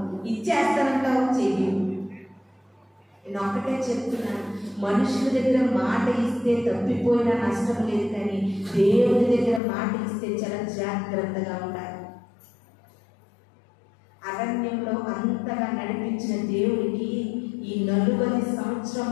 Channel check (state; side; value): drops out; right; at 9.6 s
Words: ఇచ్చేస్తానంటావు, చెయ్యి. నేను ఒక్కటే చెప్తున్నాను, మనుషుల దగ్గర మాట ఇస్తే తప్పిపోయినా నష్టం లేదు, కానీ దేవుని దగ్గర మాట ఇస్తే చాలా జాగ్రత్తగా ఉండాలి. అరణ్యంలో అంతగా నడిపించిన దేవుడికి ఈ 40